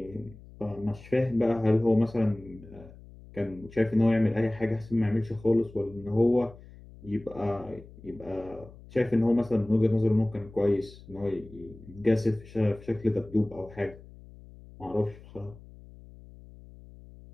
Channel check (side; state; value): left; noise; hum, 20 dB below the sound